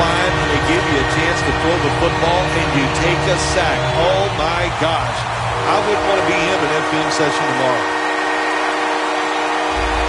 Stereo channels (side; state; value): both; identical; correlation 1.00